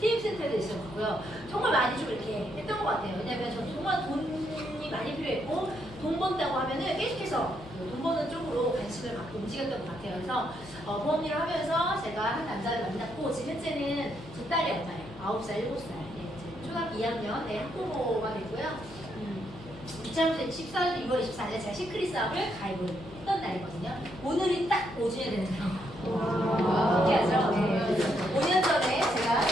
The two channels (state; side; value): noise; left; hum, 18 dB below the sound